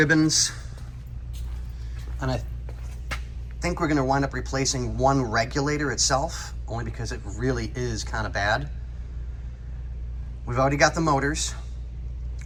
and I think we're going to wind up replacing one regulator itself, only because it really is kind of bad. We've already got the motors.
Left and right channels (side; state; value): both; identical; correlation 1.00